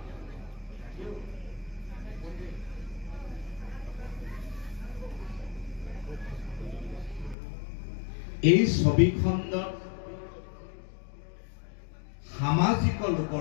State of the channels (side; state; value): right; drops out; at 7.4 s